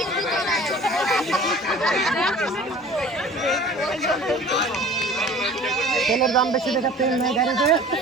তেলের দাম বেশি দেখা তেল নাই গাড়িতে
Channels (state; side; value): normal; both; correlation 0.45